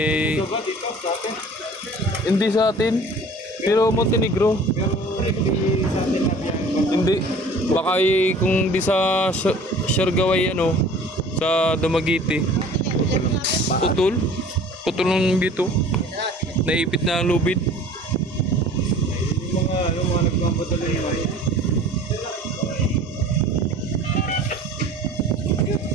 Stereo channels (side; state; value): both; normal; correlation 0.46